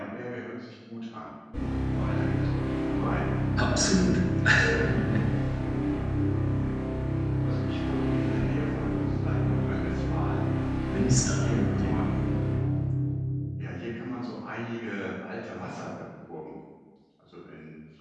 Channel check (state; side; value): identical; both; correlation 1.00